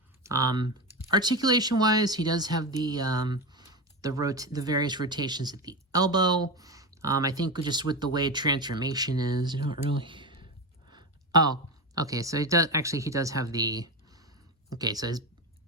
articulation wise, he does have the various rotations at the elbow. I think just with the way transformation is, you don't really. Oh, okay. So he does have the. Okay, so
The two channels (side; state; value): both; normal; correlation 0.19